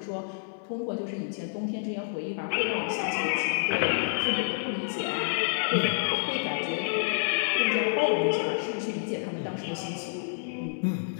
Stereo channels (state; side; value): silent; right; 59 dB below the other